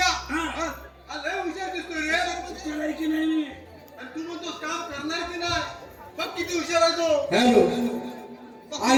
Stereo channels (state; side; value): identical; both; correlation 1.00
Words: हा. हा, हा लय हुशार दिसतोय रे. हुशार आहे की नाही मी आणि तू म्हणतोस काम करणार की नाही? बघ किती हुशार आहे तो. हॅलो